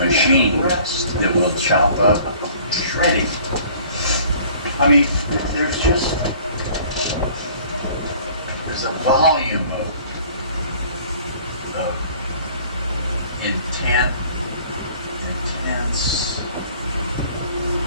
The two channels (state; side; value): inverted; both; correlation -0.52